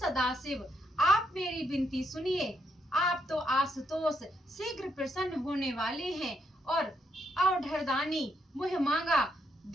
आप मेरी विनती सुनिए। आप तो आशुतोष शीघ्र प्रसन्न होने वाले हैं और अवढरदानी मुह मांगा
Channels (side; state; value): both; normal; correlation 0.77